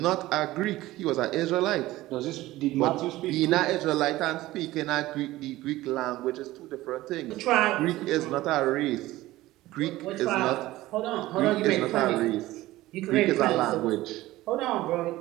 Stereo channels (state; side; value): quieter; left; 17.1 dB